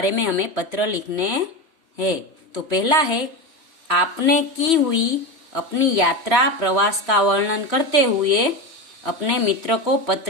में हमें पत्र लिखने हैं। तो पहला है, आपने की हुई अपनी यात्रा प्रवास का वर्णन करते हुए अपने मित्र को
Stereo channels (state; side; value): late; left; 3.1 ms